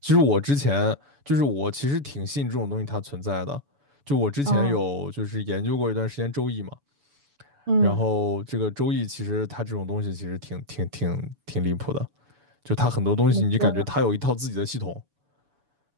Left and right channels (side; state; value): left; late; 7.0 ms